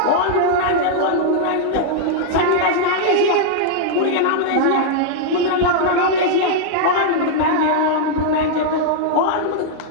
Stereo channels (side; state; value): both; different; correlation -0.01